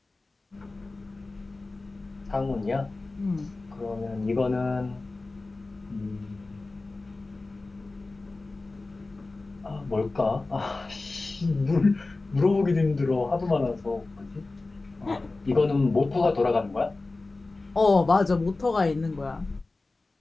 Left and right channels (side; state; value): right; quieter; 3.4 dB